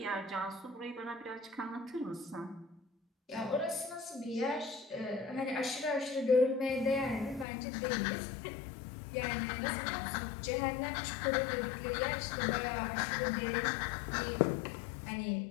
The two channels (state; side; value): drops out; right; at 7.5 s